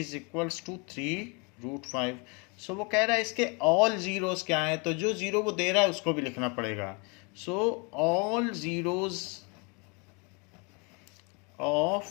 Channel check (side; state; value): right; quieter; 31.9 dB